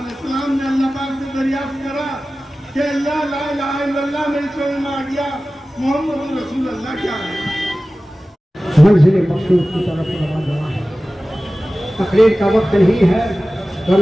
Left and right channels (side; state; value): both; normal; correlation 0.96